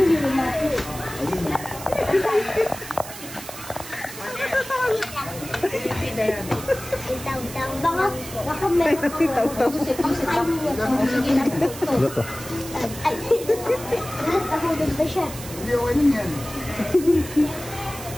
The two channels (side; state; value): right; noise; hiss, 12 dB below the sound